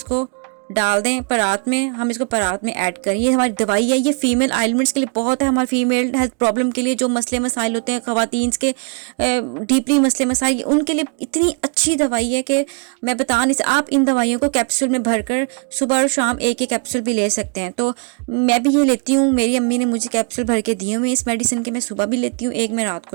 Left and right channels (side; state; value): left; quieter; 38.3 dB